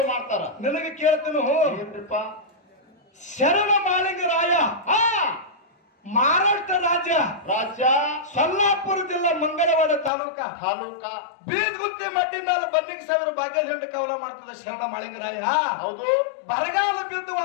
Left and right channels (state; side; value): drops out; right; at 10.1 s